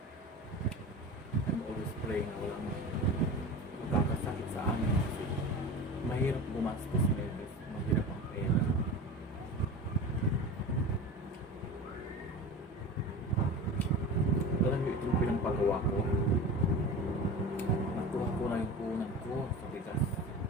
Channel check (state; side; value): normal; both; correlation 0.32